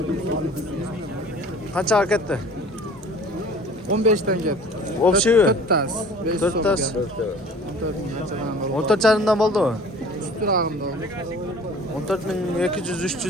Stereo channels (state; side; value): normal; both; correlation 0.46